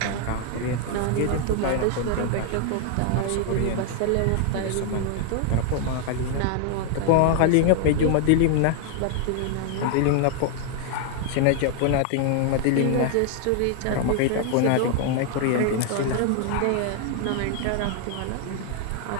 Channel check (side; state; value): both; different; correlation 0.00